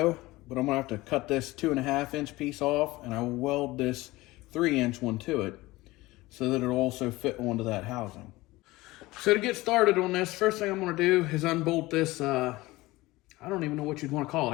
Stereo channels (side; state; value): right; quieter; 19.7 dB